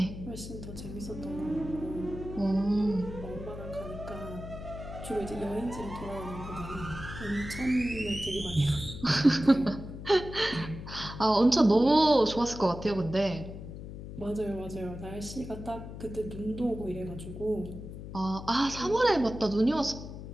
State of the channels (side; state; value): left; noise; hum, 10 dB below the sound